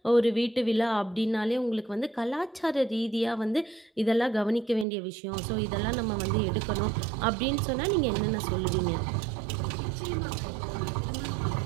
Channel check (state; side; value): drops out; left; at 4.9 s